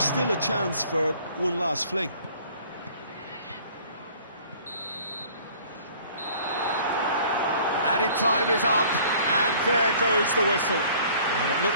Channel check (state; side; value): inverted; both; correlation -0.53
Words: still a chance for one last fling. Added time is up, and there goes the whistle. Well, it